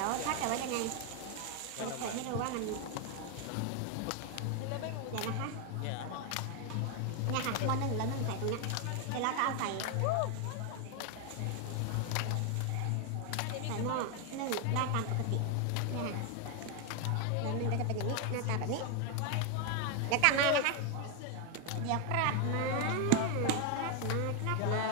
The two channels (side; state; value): both; different; correlation 0.01